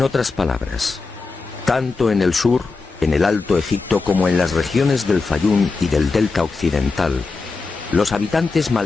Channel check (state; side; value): quieter; right; 4.1 dB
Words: otras palabras, tanto en el sur, en el Alto Egipto, como en las regiones del Fayum y del delta occidental, los habitantes